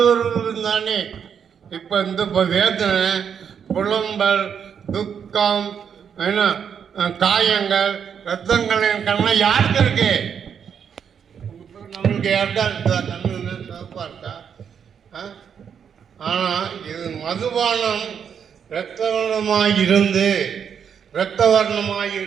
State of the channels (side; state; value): left; quieter; 7.6 dB